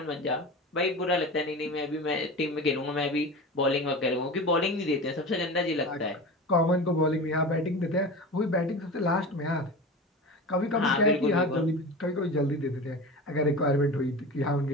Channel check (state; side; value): normal; both; correlation 0.31